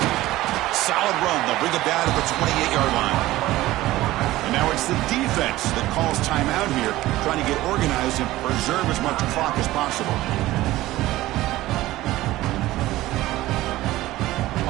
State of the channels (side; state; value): left; quieter; 16.7 dB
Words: Solid run. They'll bring it down to the 28-yard line. And now it's the defense that calls timeout here, trying to get organized and preserve as much clock as possible.